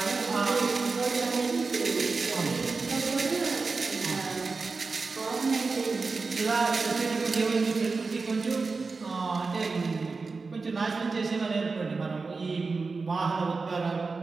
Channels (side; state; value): left; quieter; 4.2 dB